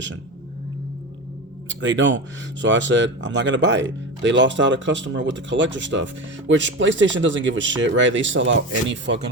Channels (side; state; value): both; normal; correlation 0.24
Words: They don't. So I said, I'm not going to buy it. They lost out a customer with the collector stuff, which PlayStation doesn't give a shit, right? They sell out any